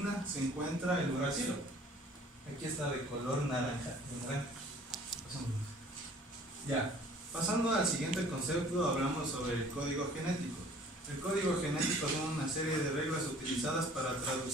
se encuentra el uracilo. Aquí está de color naranja. Ya. Pasando al siguiente concepto, hablamos sobre el código genético. El código genético son una serie de reglas utilizadas para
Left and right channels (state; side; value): normal; both; correlation 0.52